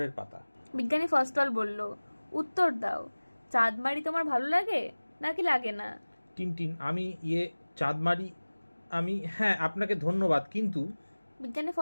পাতা। বিজ্ঞানী ফস্টল বলল, উত্তর দাও, চাঁদমারি তোমার ভালো লাগে নাকি লাগে না? টিনটিন চাঁদমারি হ্যাঁ, আপনাকে ধন্যবাদ, কিন্তু। বিজ্ঞানী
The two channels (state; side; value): inverted; both; correlation -1.00